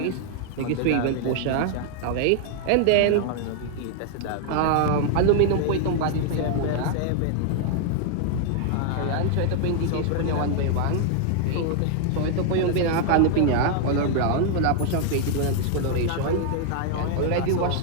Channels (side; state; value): both; different; correlation 0.00